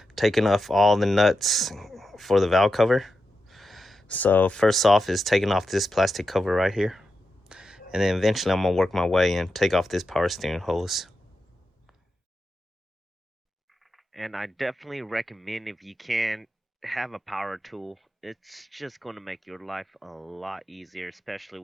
taking off all the nuts for the valve cover. So first off is taking off this plastic cover right here, and then eventually I'm gonna work my way and take off this power steering hose. And I definitely recommend, if you can, have a power tool. It's just going to make your life a lot easier, especially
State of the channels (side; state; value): both; normal; correlation 0.88